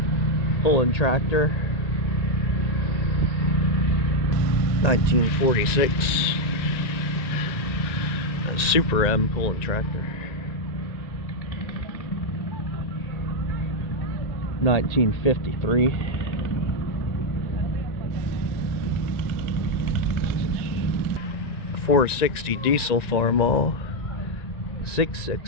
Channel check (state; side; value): late; right; 1.9 ms